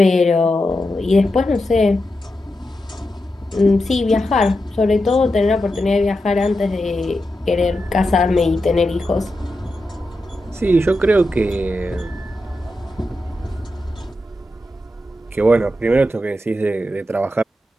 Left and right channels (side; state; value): both; normal; correlation 0.88